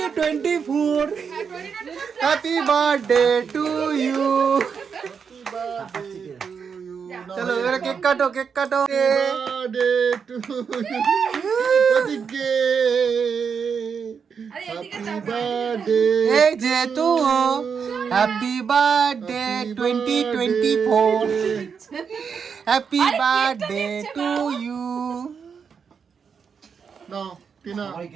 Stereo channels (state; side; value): quieter; left; 6.4 dB